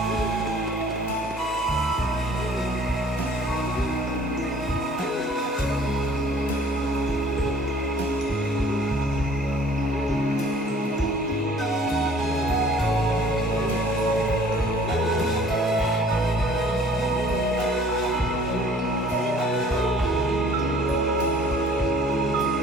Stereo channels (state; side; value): normal; both; correlation 0.53